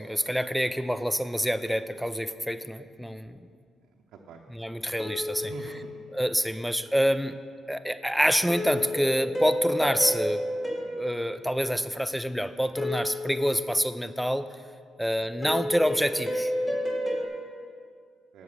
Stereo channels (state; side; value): normal; both; correlation 0.97